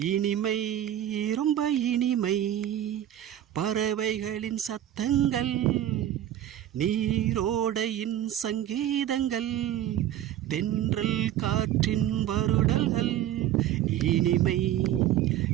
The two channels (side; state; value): left; quieter; 11.9 dB